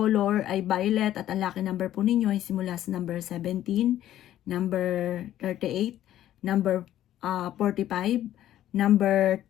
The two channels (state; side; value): quieter; right; 12.5 dB